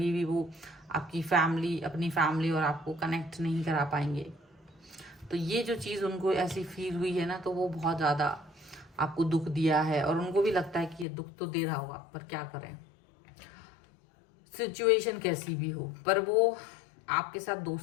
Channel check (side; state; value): right; drops out; at 11.1 s